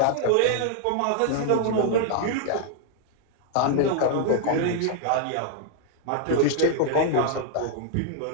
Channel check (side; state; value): both; different; correlation -0.01